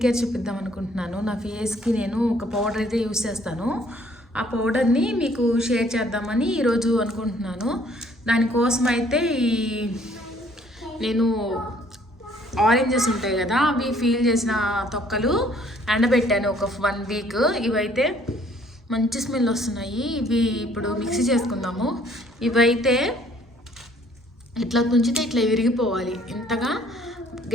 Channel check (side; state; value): both; normal; correlation 0.60